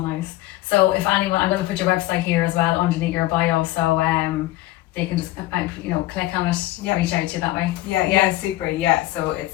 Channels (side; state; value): right; quieter; 17.0 dB